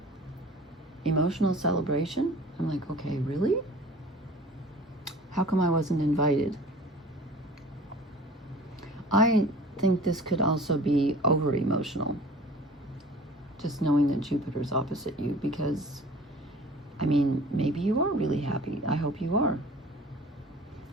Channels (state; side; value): normal; both; correlation 0.45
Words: Emotional celebration. I'm like, okay, really? How come I wasn't invited? I think this could also be over emotional, just knowing that Jupiter's opposite you, because I mean, maybe you are really happy. I hope you are.